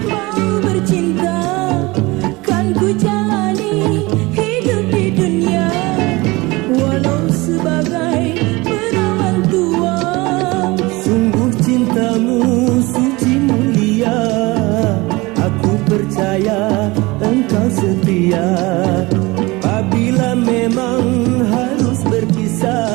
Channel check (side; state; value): left; quieter; 22.8 dB